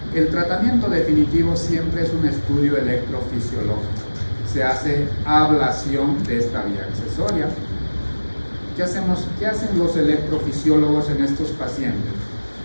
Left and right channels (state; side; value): inverted; both; correlation -1.00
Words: El tratamiento definitivo siempre es un estudio electrofisiológico. Se hace ablación de esta vía accesoria. ¿Qué hacen los electrofisiólogos en estos pacientes?